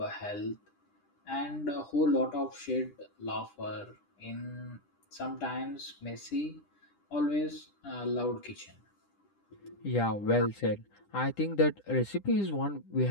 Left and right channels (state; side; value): late; right; 10 ms